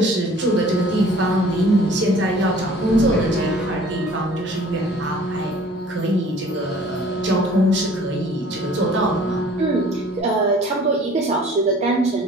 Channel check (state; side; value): normal; both; correlation 0.51